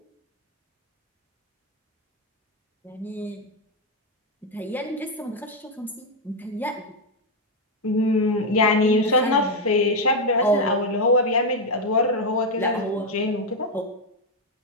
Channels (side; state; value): both; normal; correlation 0.03